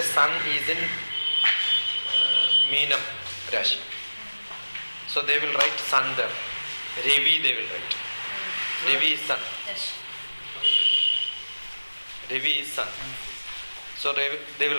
Sun is in Meenam Rashi. So they will write Sun there. Ravi they will write. Ravi is Sun. Yes. Ravi is Sun. So they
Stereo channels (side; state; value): both; inverted; correlation -1.00